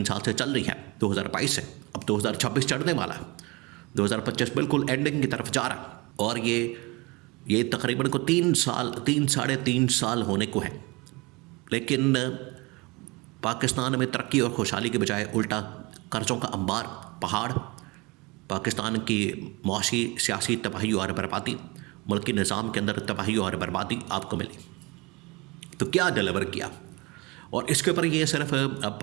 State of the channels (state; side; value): quieter; left; 25.5 dB